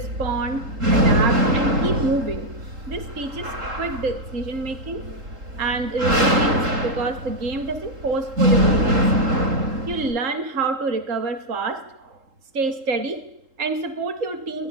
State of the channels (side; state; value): left; late; 3.8 ms